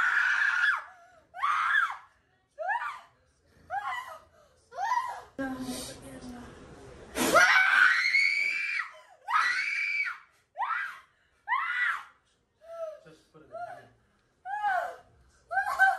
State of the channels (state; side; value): identical; both; correlation 1.00